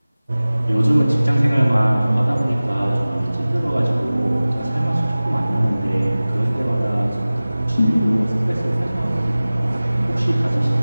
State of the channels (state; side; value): inverted; both; correlation -0.98